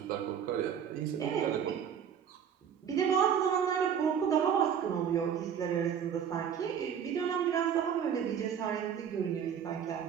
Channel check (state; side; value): quieter; left; 8.1 dB